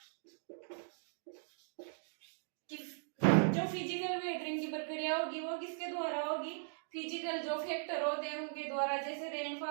जो फिजिकल वेदरिंग की प्रक्रिया होगी, वो किसके द्वारा होगी? फिजिकल जो फैक्टर होते हैं उनके द्वारा। जैसे रेनफॉल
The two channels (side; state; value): left; silent; digital silence